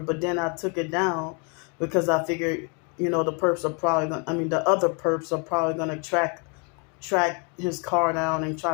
then I took it down because I figured the perps are probably gonna, the other perps are probably gonna track his car down and try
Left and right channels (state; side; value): quieter; right; 35.5 dB